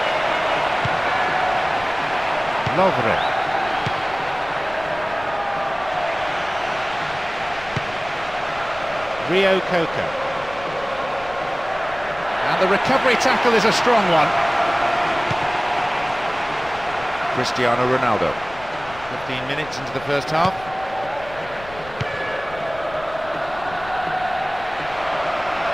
Lovely. Rio Coco. And the recovery tackle is a strong one. Cristiano Ronaldo. 15 minutes into the first half.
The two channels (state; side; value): noise; left; rumble, 18 dB below the sound